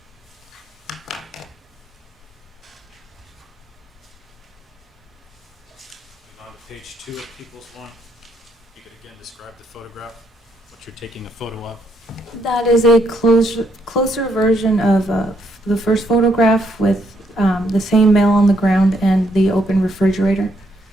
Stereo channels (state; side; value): normal; both; correlation 0.74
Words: On to page 2 of People's One. You could again describe the photograph, what you're taking a photo of. That is a closer version of the first photograph with the same male on the ground and the open refrigerator.